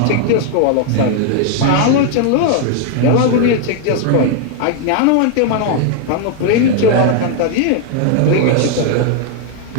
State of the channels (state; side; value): different; both; correlation 0.00